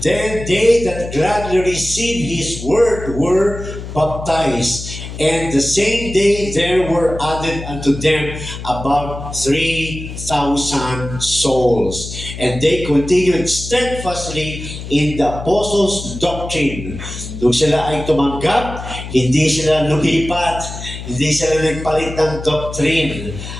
then they that gladly received His word were baptized. And the same day there were added unto them about 3,000 souls. And they continued steadfastly in the apostles' doctrine. Nung sila ay tumanggap, hindi sila lumipat, hindi sila nagpalit ng doctrine.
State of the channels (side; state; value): left; noise; hum, 10 dB below the sound